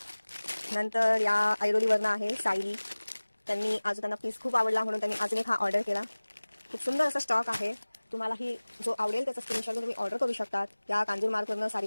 नंतर या ऐरोलीवरनं आहे सायली. त्यांनी अजून त्यांना पीस खूप आवडला म्हणून त्यांनी अजून एक हा ऑर्डर केला. खूप सुंदर असा स्टॉक आहे. तुम्हालाही जो आवडेल त्याचा स्क्रीनशॉट तुम्ही ऑर्डर करू शकतात. या कांजूर मार्कवरनं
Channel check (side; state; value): both; inverted; correlation -1.00